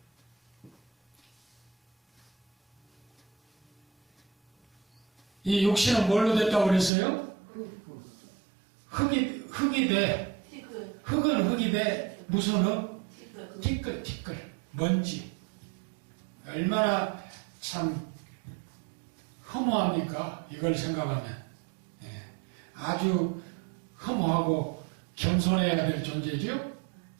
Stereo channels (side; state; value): left; drops out; at 6.9 s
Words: 이 육신은 뭘로 됐다고 그랬어요? 흙이 돼. 흙은 흙이 돼. 무슨 흙? 티끌. 먼지. 얼마나 참 허무합니까? 이걸 생각하면. 예. 아주 허무하고 겸손해야 될 존재죠?